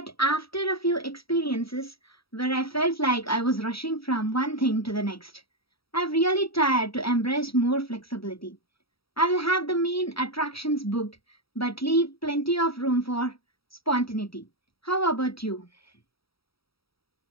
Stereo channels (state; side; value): late; right; 0.76 ms